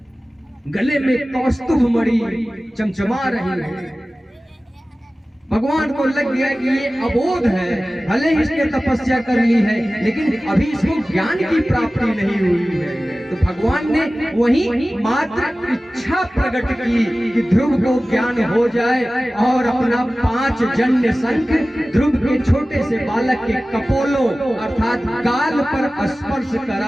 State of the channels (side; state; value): both; normal; correlation 0.97